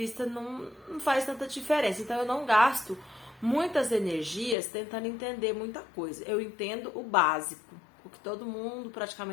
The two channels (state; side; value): drops out; right; at 4.5 s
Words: não faz tanta diferença. Então, eu não gasto muitas energias tentando entender muita coisa. Eu entendo o básico, o que todo mundo